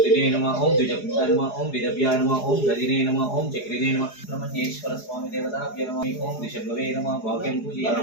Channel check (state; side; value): late; right; 4.8 ms